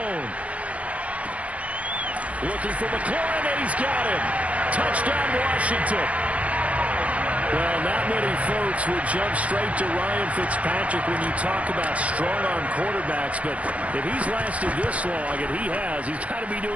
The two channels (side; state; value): left; late; 0.065 ms